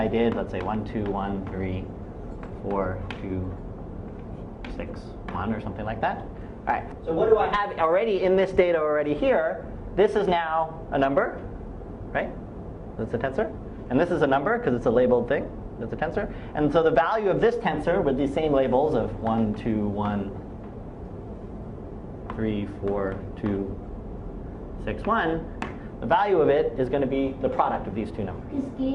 did, let's say 1, 2, 1, 3, 4, 2, 6, 1 or something like that. All right, so what do I have already in this data already here? This is now a number, right? That's a tensor. And this is a number because it's a labeled thing. That's a tensor. And so the value of this tensor with these same labels of 1, 2, 1, 3, 4, 2, 6, 1, the value of it is going to be the product of these two numbers. Is k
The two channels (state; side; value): identical; both; correlation 1.00